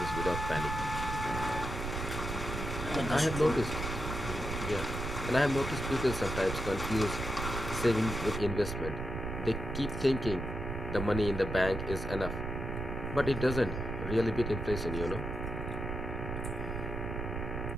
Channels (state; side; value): noise; right; rumble, 4 dB below the sound